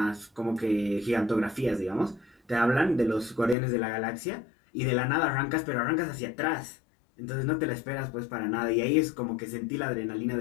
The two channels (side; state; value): right; drops out; at 3.6 s